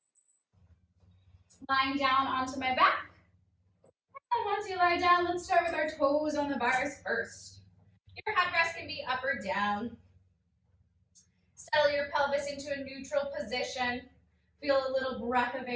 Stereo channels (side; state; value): both; identical; correlation 1.00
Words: Lying down onto my back. And once you lie down, let's start with our toes on the bars first. Your headrest can be up or down. Settle your pelvis into a neutral position. Feel a little breath of